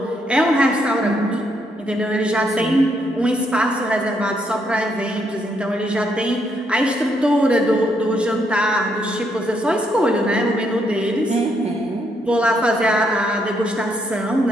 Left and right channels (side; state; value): both; normal; correlation 0.75